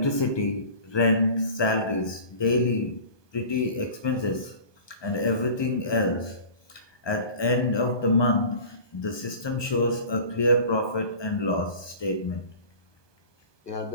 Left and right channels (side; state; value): right; late; 1.2 ms